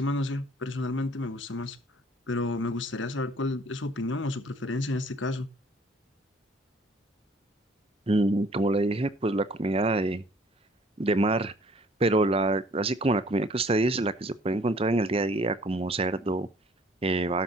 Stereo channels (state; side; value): normal; both; correlation 0.56